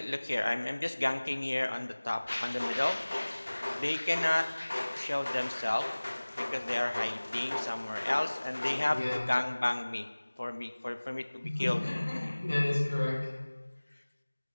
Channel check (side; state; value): both; inverted; correlation -1.00